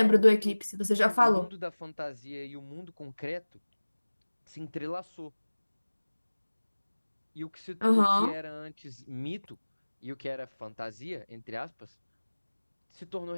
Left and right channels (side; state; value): both; inverted; correlation -1.00